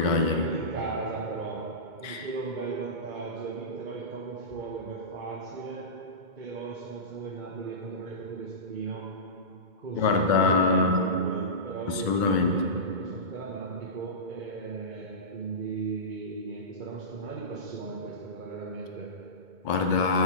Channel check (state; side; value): late; left; 2.2 ms